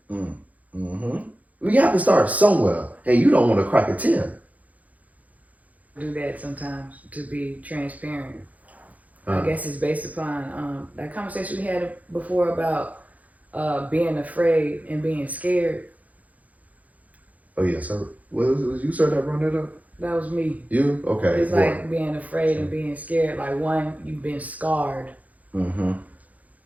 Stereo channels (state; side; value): late; left; 0.074 ms